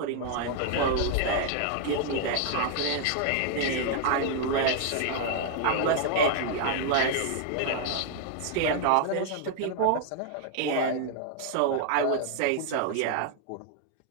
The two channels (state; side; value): different; both; correlation 0.00